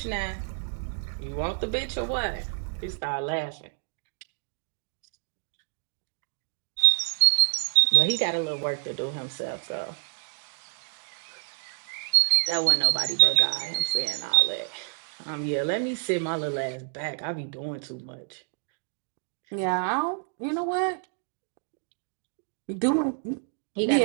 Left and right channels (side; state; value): left; silent; 59 dB below the other